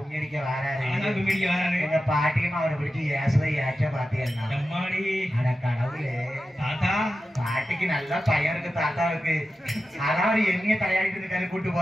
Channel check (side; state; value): both; normal; correlation 0.92